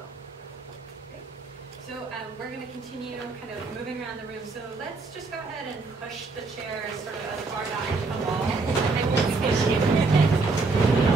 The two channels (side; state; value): left; quieter; 3.9 dB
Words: So we're going to continue kind of moving around the room. So let's just go ahead and push the chairs sort of as far back to the wall. They won't stay